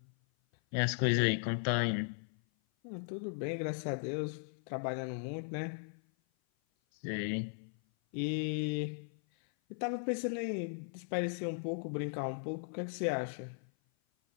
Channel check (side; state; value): right; silent; 53 dB below the other